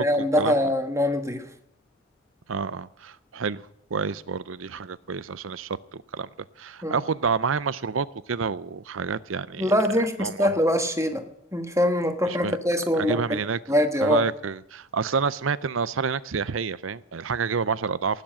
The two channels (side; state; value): both; normal; correlation 0.33